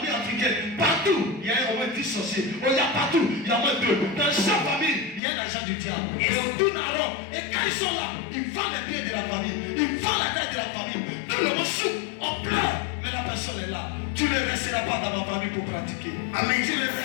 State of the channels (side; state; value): right; drops out; at 5.2 s